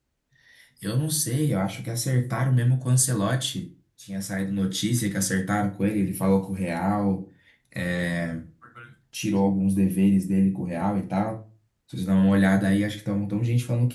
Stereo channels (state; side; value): identical; both; correlation 1.00